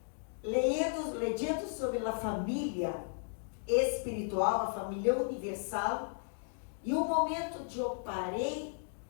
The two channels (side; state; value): right; silent; digital silence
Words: lendo sobre a família espiritual, a família universal, e um momento de eu parei